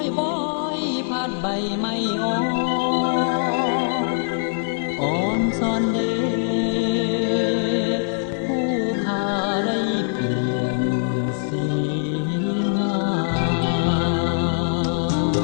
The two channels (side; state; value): right; silent; 64 dB below the other